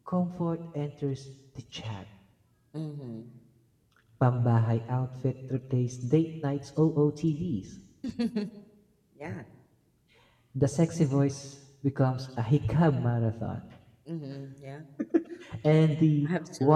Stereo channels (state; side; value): identical; both; correlation 1.00